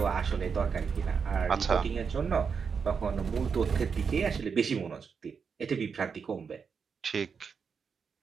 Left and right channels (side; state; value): left; quieter; 6.0 dB